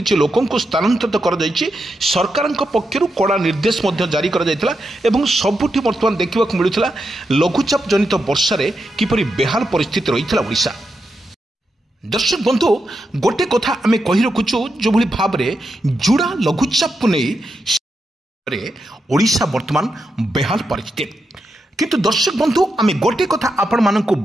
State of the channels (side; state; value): both; normal; correlation 0.86